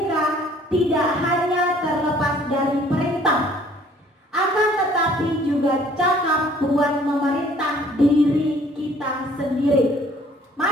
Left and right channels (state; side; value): normal; both; correlation 0.57